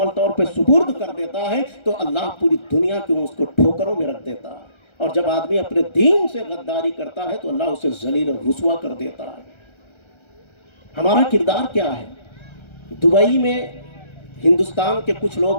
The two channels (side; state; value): right; late; 1.3 ms